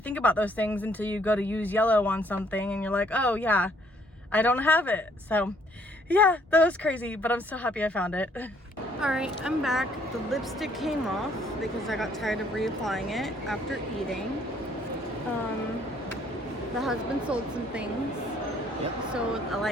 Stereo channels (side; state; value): both; normal; correlation 0.64